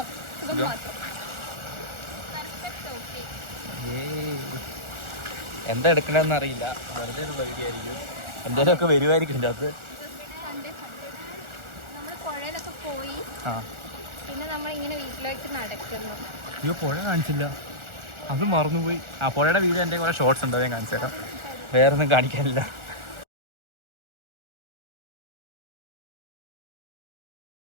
മാത്രം. എന്താ എടുക്കണമെന്ന് അറിയില്ല, വെറുതെ ഉള്ള വീഡിയോ ആയിരിക്കും. എന്തായാലും ഒക്കെ വരുമായിരിക്കും ഇതിൻ്റെ അകത്ത്. നമ്മള് പുഴയിലൊക്കെ പോയി, പിന്നെ നമ്മളിങ്ങനെ വീട്ടിലേക്ക് നടക്കുന്നു. അയ്യോ, പുഴ കാണിച്ചില്ല, അത് മറന്നുപോയി. ആ പുഴയുടെ വീഡിയോ എൻ്റെ കുറെ ഷോർട്സ് ഉണ്ട്, ഞാൻ കാണിച്ചു തരാം. വേറൊന്നും കാണിക്കാനില്ല.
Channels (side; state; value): left; late; 1.4 ms